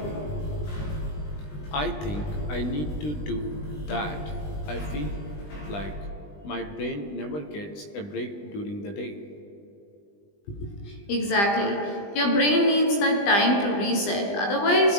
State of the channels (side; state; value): right; late; 20 ms